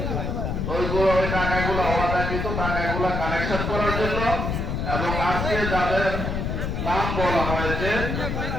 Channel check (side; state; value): left; noise; rumble, 2 dB below the sound